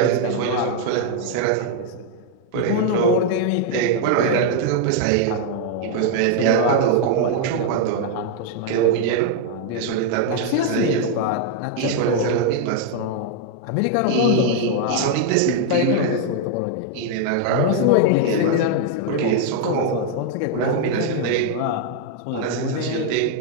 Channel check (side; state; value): both; different; correlation 0.00